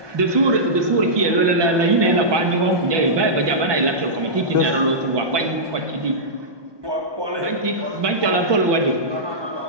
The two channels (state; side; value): late; left; 1.2 ms